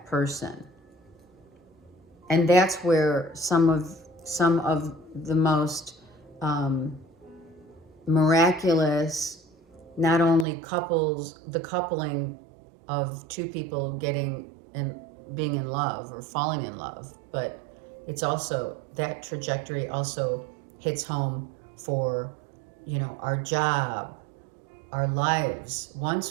person. And that's where some of the most miraculous, not only the coupling of two people being in love or falling in love, but it's also, that trajectory also hits home for, you know, our job, our lives.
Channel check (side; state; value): left; drops out; at 10.5 s